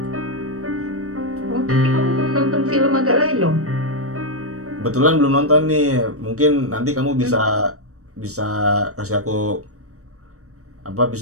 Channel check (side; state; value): left; late; 0.65 ms